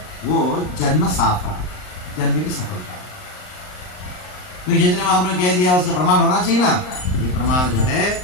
वो जन्म साफल, जन्म की सफलता। तो चैतन्य महाप्रभु ने कह दिया, उसका प्रमाण होना चाहिए ना। ये प्रमाण जो है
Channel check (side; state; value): right; late; 39 ms